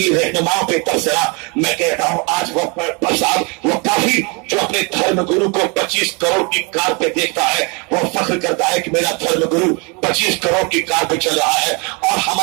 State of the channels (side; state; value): left; quieter; 31.2 dB